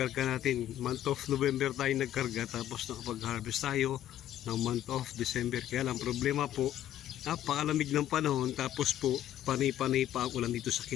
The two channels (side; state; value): right; quieter; 12.2 dB